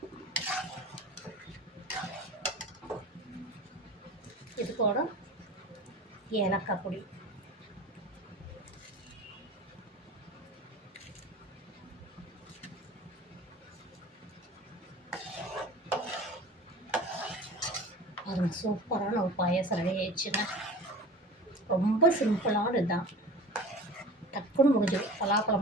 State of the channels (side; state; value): both; normal; correlation 0.37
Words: இது கூட ஏலக்காய் பொடி, அது சூப்பரான ஒரு பாயாசம் ரெடி ஆயிடுச்சுங்க. ரொம்ப சிம்பிளான இதுதான், டக்குன்னு முடிஞ்சிடும். பலாப்பழம்